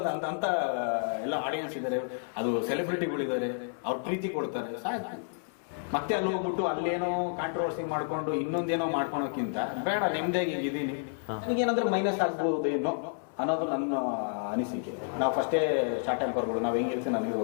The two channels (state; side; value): silent; right; 58 dB below the other